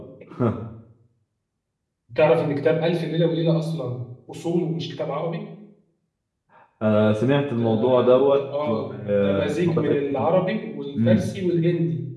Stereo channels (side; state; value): both; identical; correlation 1.00